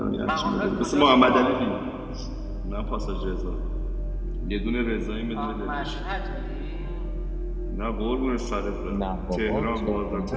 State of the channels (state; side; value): identical; both; correlation 1.00